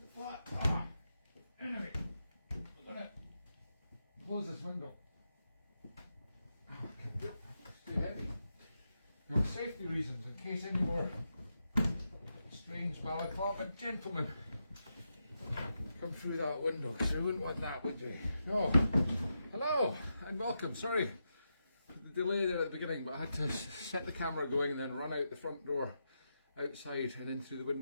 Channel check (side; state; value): both; inverted; correlation -0.86